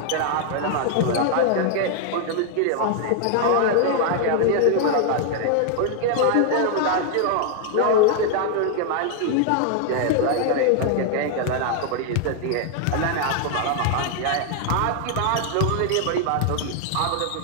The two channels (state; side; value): different; both; correlation 0.00